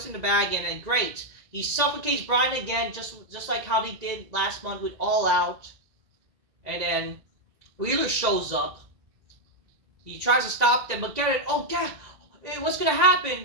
it in the bag, and then great. He suffocates Bryan again, just like how he did last month with All Out. And then Wheeler shows up. He tries to stop them, but get it. Oh, God, what's going to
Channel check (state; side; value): late; left; 2.0 ms